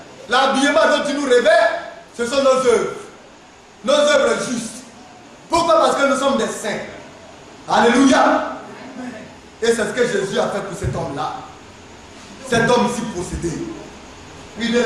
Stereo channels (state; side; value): identical; both; correlation 1.00